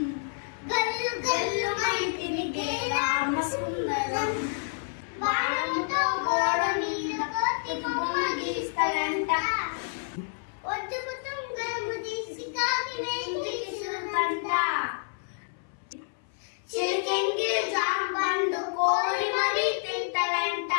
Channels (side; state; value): right; silent; 58 dB below the other